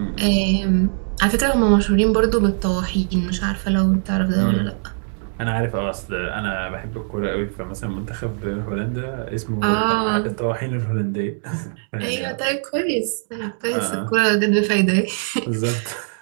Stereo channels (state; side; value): silent; left; 58 dB below the other